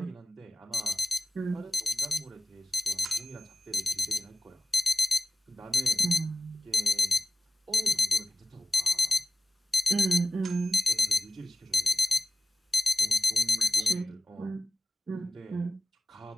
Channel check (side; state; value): both; normal; correlation 0.96